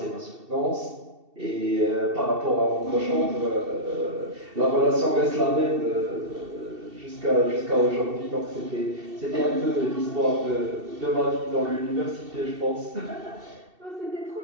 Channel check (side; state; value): left; late; 2.7 ms